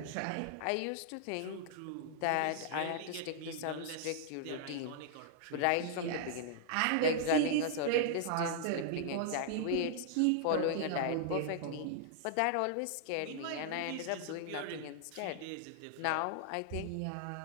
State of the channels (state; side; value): different; both; correlation -0.01